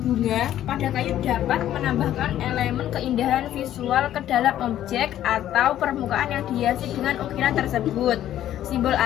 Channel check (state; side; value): quieter; right; 12.1 dB